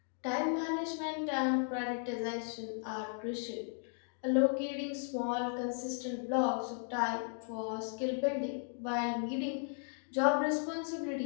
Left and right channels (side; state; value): right; silent; 54 dB below the other